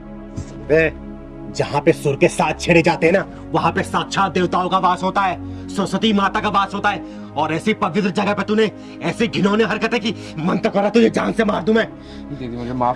जहाँ पे सुर के साथ छेड़े जाते हैं ना, वहाँ पे साक्षात देवताओं का वास होता है, सरस्वती माता का वास होता है, और ऐसी पवित्र जगह पे तूने ऐसी घिनौनी हरकतें की, मन तो करा तुझे जान से मार दूं मैं। दीदी मुझे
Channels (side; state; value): both; identical; correlation 1.00